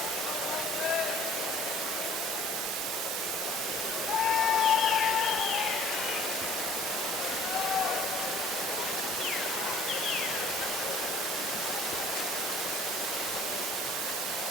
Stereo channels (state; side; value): normal; both; correlation 0.50